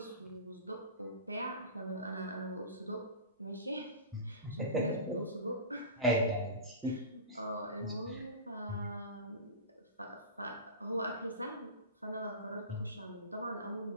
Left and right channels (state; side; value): inverted; both; correlation -0.30